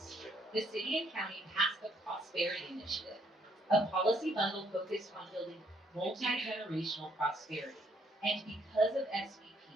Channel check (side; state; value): both; normal; correlation 0.68